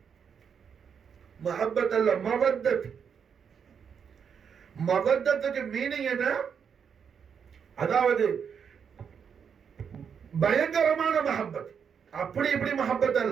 மஹப்பத் அல்ல, மவத்தத். மவத்தத்துக்கு மீனிங் என்ன? அதாவது பயங்கரமான மஹப்பத், அப்படி இப்படி மஹப்பத்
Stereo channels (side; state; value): left; quieter; 7.0 dB